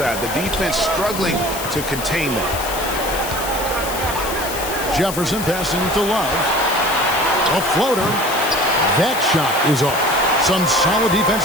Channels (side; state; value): left; noise; hiss, 8 dB below the sound